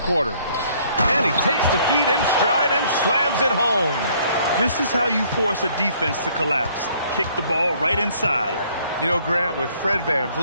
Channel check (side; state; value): both; inverted; correlation -0.62